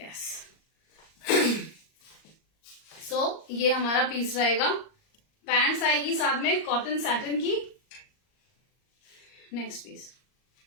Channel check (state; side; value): late; right; 38 ms